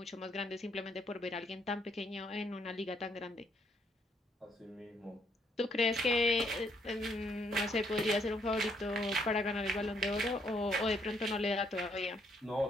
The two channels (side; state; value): both; normal; correlation 0.71